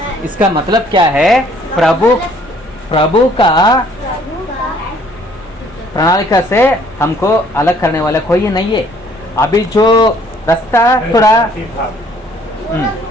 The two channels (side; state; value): both; normal; correlation 0.60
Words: इसका मतलब क्या है? प्रभु का प्रणालिका से हमको अलग करने वाला कोई नहीं है। अभी जो रास्ता थोड़ा